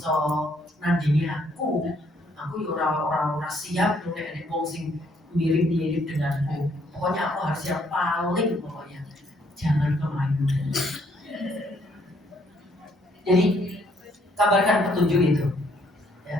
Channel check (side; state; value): both; normal; correlation 0.68